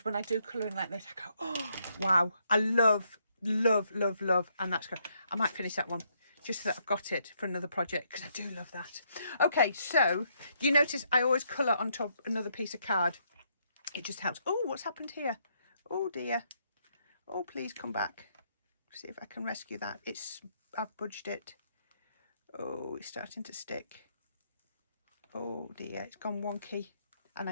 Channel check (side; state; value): both; inverted; correlation -0.74